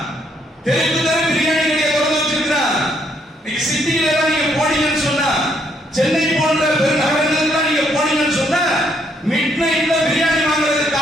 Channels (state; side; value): normal; both; correlation 0.71